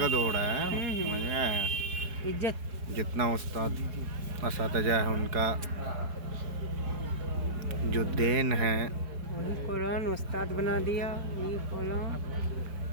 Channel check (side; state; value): left; late; 4.7 ms